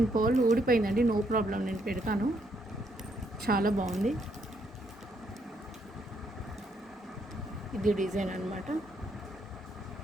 పర్ల్ ఊడిపోయిందండి, నో ప్రాబ్లం, నేను పెడతాను. చాలా బాగుంది. ఇది డిజైన్ అనమాట.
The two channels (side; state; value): both; normal; correlation 0.73